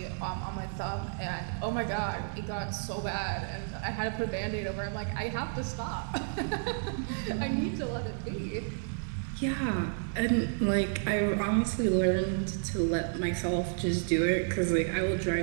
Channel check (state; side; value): silent; left; 57 dB below the other